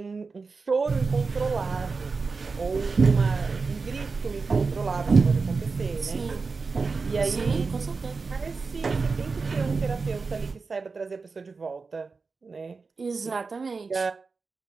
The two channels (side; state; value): left; quieter; 4.4 dB